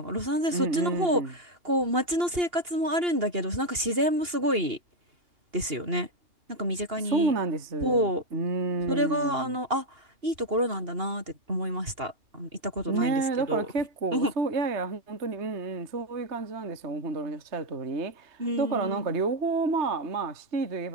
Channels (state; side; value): late; left; 2.8 ms